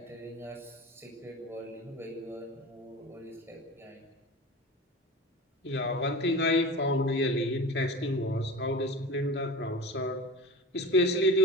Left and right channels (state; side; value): normal; both; correlation 0.34